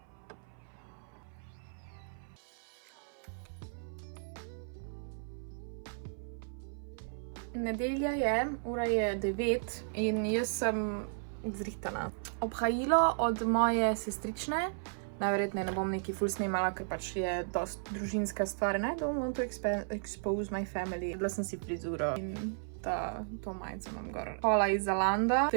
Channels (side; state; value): left; silent; 55 dB below the other